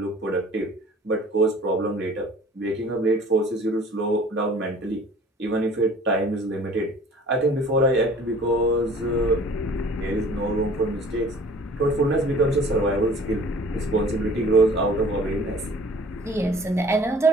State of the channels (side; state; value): both; normal; correlation 0.50